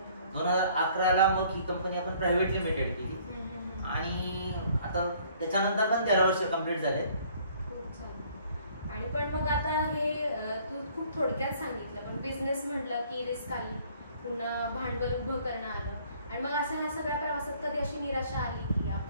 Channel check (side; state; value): both; inverted; correlation -0.59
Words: 2011ला मग ही कंपनी आपण प्रायव्हेट लिमिटेड केली आणि आता त्याच्यानंतर पण 13 वर्ष कंप्लीट झाले. आणि पण मग आता हे तू खूप थोडक्यात सांगितलं, पण बिझनेस म्हटलं की रिस्क आली, पुन्हा भांडवल उभं करणं आलं. आणि मग असं ह्या सगळ्या प्रवासात कधी अशी निराशा आली की